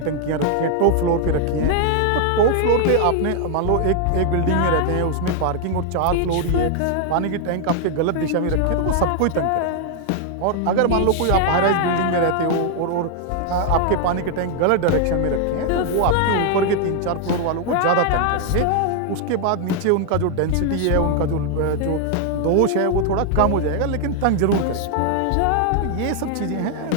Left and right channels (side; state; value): both; different; correlation 0.00